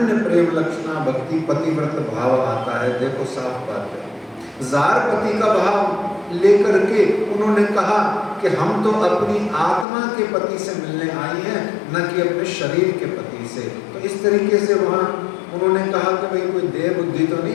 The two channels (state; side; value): drops out; right; at 9.9 s